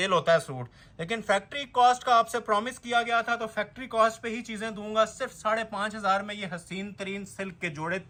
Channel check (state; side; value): identical; both; correlation 1.00